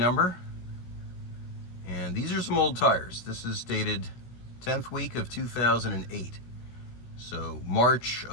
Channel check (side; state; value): right; late; 16 ms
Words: And these are some old tires. This is dated 10th week of 2008. So March